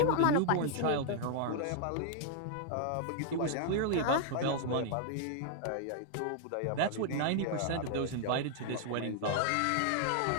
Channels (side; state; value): both; different; correlation 0.00